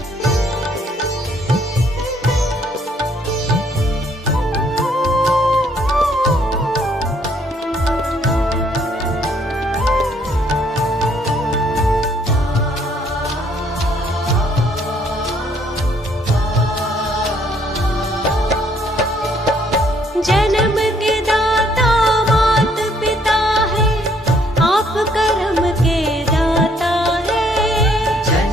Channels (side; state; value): both; normal; correlation 0.66